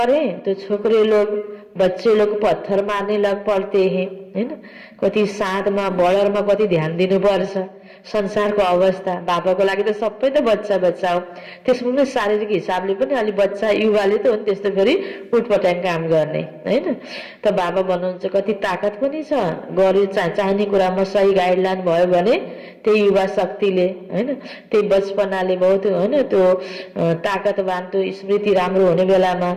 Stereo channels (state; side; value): identical; both; correlation 1.00